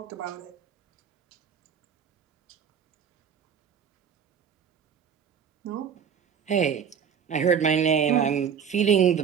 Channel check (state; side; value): quieter; left; 7.5 dB